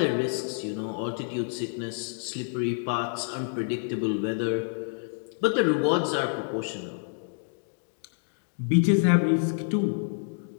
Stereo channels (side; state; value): right; silent; digital silence